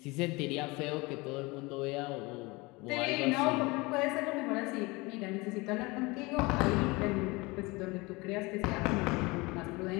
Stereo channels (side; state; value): right; quieter; 24.3 dB